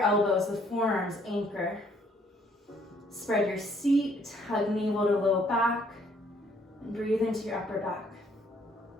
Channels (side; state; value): both; normal; correlation 0.65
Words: with forearms anchor. Spread your seat, hug navel to low back, and breathe into your upper back.